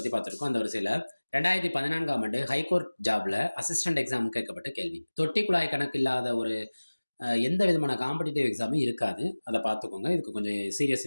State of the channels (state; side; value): inverted; both; correlation -1.00